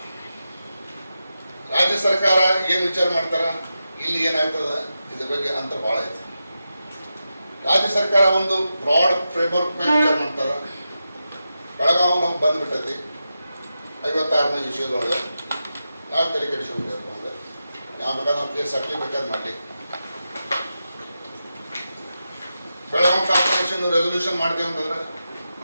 ರಾಜ್ಯ ಸರ್ಕಾರ ಏನು ವಿಚಾರ ಮಾಡ್ತಾರ, ಇಲ್ಲಿ ಏನಾಗ್ತದ ಇದ್ರ ಬಗ್ಗೆ ಅಂತ ಭಾಳ ಐತೆ. ರಾಜ್ಯ ಸರ್ಕಾರ ಒಂದು ಬ್ರಾಡ್ ಫ್ರೇಮ್ವರ್ಕ್ ಮೇಲೆ ವಿಚಾರ ಮಾಡ್ತಾರ. ಬೆಳಗಾವಿ ನಾವು ಬಂದ್ಬಿಟ್ಟೈತಿ 56ನೇ ವಿಷಯದೊಳಗೆ ನಾವು ತಲೆ ಕೆಡಿಸ್ಕೊಬೇಕು ಅಂದ್ರೆ ಯಾವ ಬೇಕಾದ್ರೆ ನಾವು ಕೇಸ್ ಹಾಕಲಿ ಬೇಕಾದ್ರೆ ಮಾಡಲಿ. ಬೆಳಗಾವಿ ಕಾರ್ಪೊರೇಷನ್ ರೆಸೊಲ್ಯೂಷನ್ ಮಾಡ್ತೀವಿ ಅಂತಂದ್ರೆ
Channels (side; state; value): both; inverted; correlation -0.90